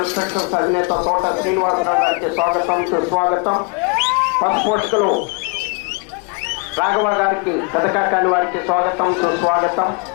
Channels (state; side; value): quieter; right; 33.5 dB